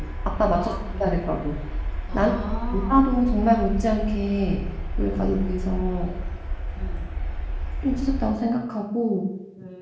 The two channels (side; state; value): both; identical; correlation 1.00